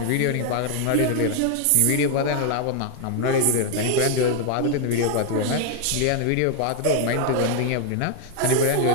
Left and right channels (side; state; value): both; different; correlation 0.00